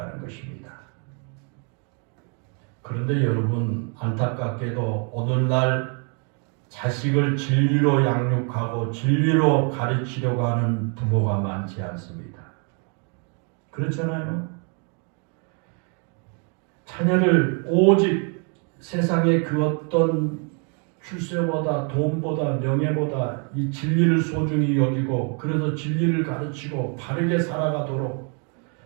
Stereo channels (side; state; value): left; quieter; 38.7 dB